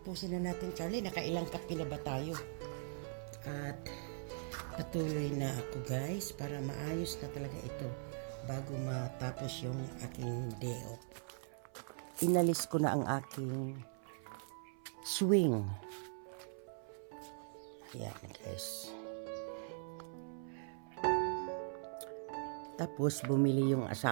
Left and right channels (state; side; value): silent; left; 51 dB below the other